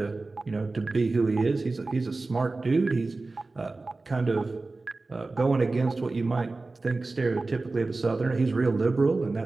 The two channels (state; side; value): quieter; left; 3.4 dB